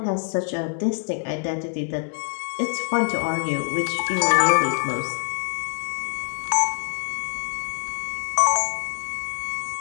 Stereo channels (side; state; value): right; silent; 60 dB below the other